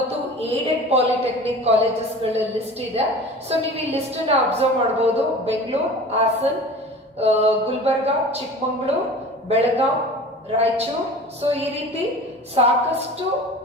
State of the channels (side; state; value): both; normal; correlation 0.39